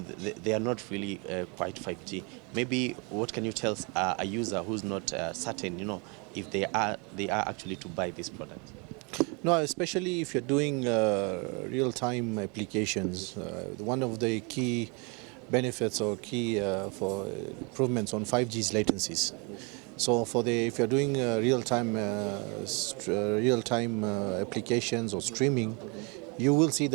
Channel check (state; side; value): quieter; left; 32.3 dB